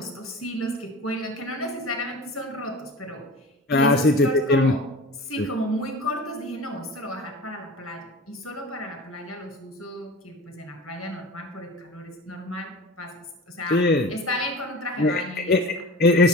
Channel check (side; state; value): both; normal; correlation 0.36